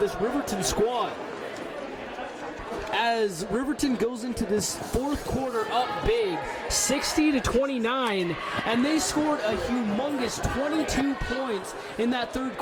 Riverton squad. As Riverton goes into this fourth quarter up big, 60-29, and they scored a humongous 22 points in that third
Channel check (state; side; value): identical; both; correlation 1.00